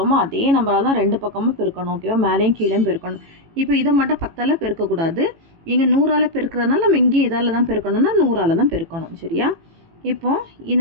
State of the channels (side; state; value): left; late; 18 ms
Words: அதே நம்பரால் தான் ரெண்டு பக்கமும் பெருக்கணும். ஓகேவா? மேலேயும் கீழேயும் பெருக்கணும். இப்போ இதை மட்டும் 10ஆல் பெருக்கக்கூடாது. இங்கே 100ஆல் பெருக்கிறதுனால நம்ம இங்கே இதால் தான் பெருக்கணும்னா 100ஆல் தான் பெருக்கணும். சரியா? இப்போ